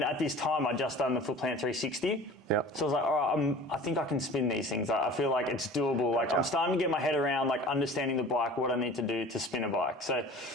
at this time, I'd just done the foot plant 360. Yep. So I was like, all right, I think I can spin these things. I feel like it's doable. Like, I'm starting to get my head around, like, understanding the bike, what I need to do to spin a bike. So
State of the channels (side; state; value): both; normal; correlation 0.42